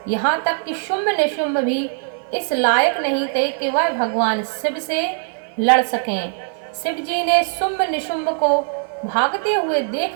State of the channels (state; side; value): silent; left; 63 dB below the other